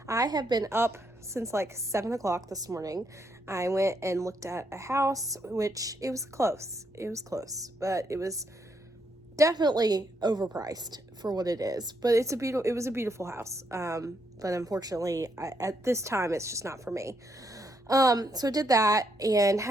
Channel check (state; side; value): normal; both; correlation 0.76